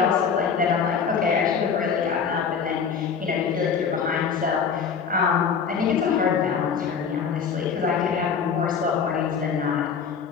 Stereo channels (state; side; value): quieter; right; 6.4 dB